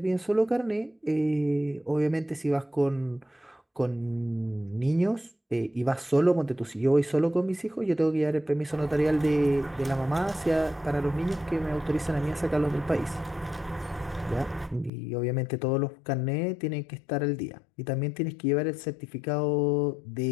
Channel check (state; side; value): drops out; right; at 14.9 s